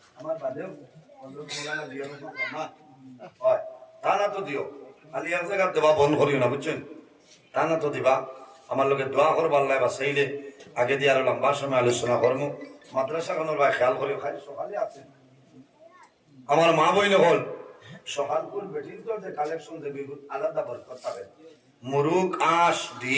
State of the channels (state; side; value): identical; both; correlation 1.00